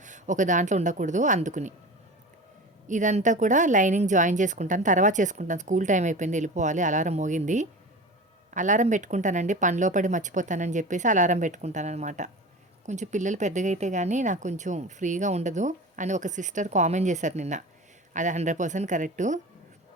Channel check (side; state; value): both; normal; correlation 0.33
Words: ఒక దాంట్లో ఉండకూడదు అందుకుని. ఇదంతా కూడా లైనింగ్ జాయిన్ చేసుకుంటాను. తర్వాత చేసుకుంటాను. స్కూల్ టైం అయిపోయింది, వెళ్ళిపోవాలి. అలారం మోగింది. అలారం పెట్టుకుంటానండి. పనిలో పడి మర్చిపోతానని చెప్పేసి అలారం పెట్టుకుంటాననమాట. కొంచెం పిల్లలు పెద్దగా అయితే గానీ నాకు కొంచెం ఫ్రీగా ఉండదు అని ఒక సిస్టర్ కామెంట్ చేశారు నిన్న. అది 100% కరెక్టు.